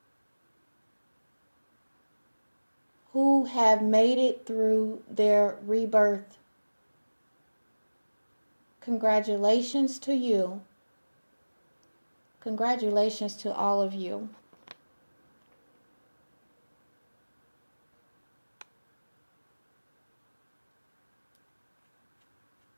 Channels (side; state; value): both; inverted; correlation -1.00